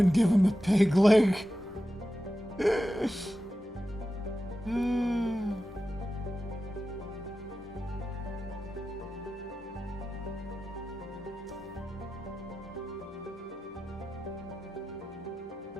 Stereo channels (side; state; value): both; normal; correlation 0.92